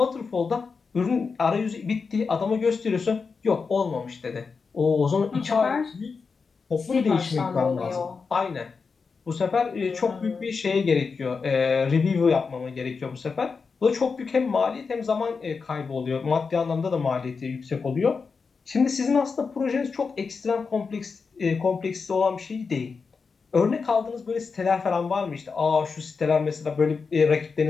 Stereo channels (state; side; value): quieter; right; 5.0 dB